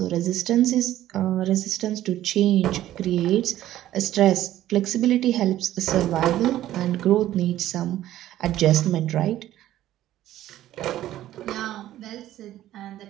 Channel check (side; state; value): left; quieter; 13.5 dB